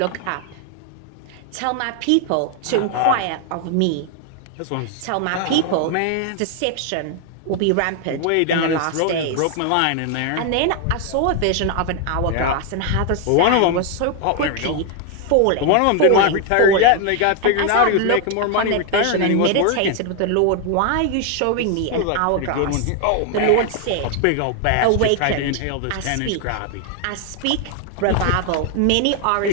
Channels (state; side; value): different; both; correlation 0.00